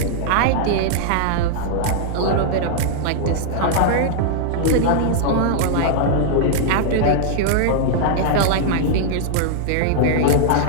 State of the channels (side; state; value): both; different; correlation -0.01